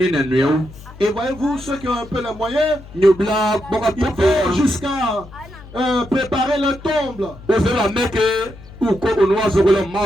Et voyez-vous, ceux qui ont un peu les moyens, ils vont jusqu'à préparer le tombe.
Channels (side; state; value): left; noise; hum, 18 dB below the sound